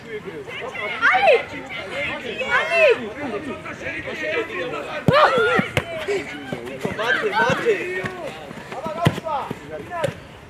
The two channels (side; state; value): both; identical; correlation 1.00